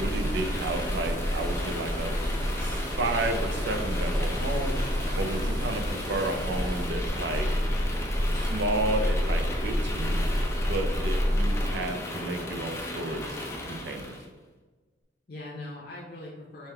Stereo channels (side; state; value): both; normal; correlation 0.61